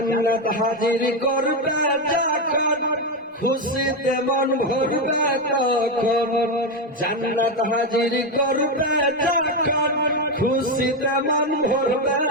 হাজির করবে যখন, খুশিতে মন ভরবে তখন। জান্নাত হাজির করবে যখন, খুশিতে মন ভরবে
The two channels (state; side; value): normal; both; correlation 0.09